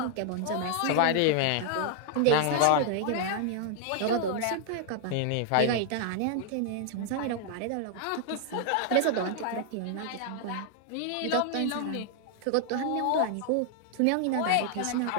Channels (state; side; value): different; both; correlation 0.00